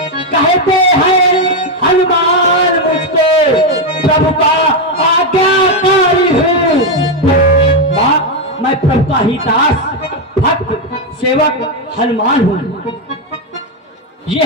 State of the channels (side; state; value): both; normal; correlation 0.05